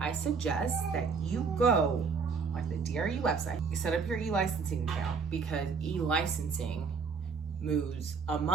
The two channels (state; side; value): quieter; left; 5.3 dB